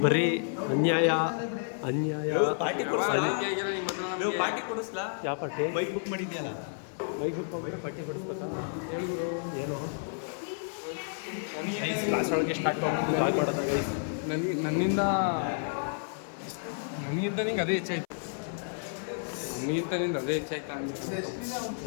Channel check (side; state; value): right; silent; 57 dB below the other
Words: ಬರೀ ಅನ್ಯಾಯ. ಯಾವ ಪಾರ್ಟಿ? ಬೈಕ್ ಬುಕ್ ಮಾಡಿದ್ಯಲ್ಲ, ಬೈಕ್ ಬುಕ್ ಹೋಗ್ಬಿಟ್ಟು ಪಾರ್ಟಿ ಕೊಡಿಸ್ಬೇಕಾ? ಏನು ಕ್ಲಾಸ್ ಒಳಗೆ ಸ್ಟಾರ್ಟ್ ಮಾಡೋದು ಗೈಸ್. ನನ್ನಿಂದ ನಿಂಗೆ ಅದೇ ಹೆಚ್ಚಾಯ್ತು. ನಿಂದ ಅದೇ ಹೆಚ್ಚಾಯ್ತು.